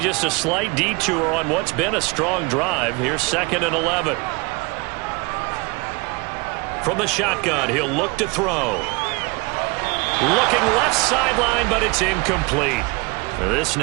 a slight detour on what's been a strong drive. Here's 2nd and 11. From the shotgun, he'll look to throw. Looking left sideline, but it's incomplete. This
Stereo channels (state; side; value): quieter; left; 27.6 dB